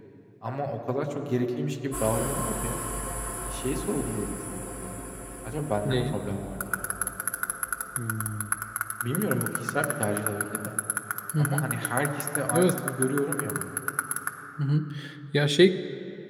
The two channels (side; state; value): both; identical; correlation 1.00